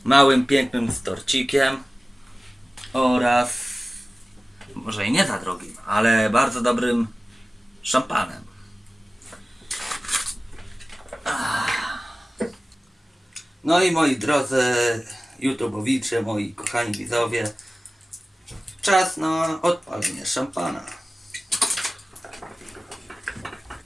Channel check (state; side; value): normal; both; correlation 0.97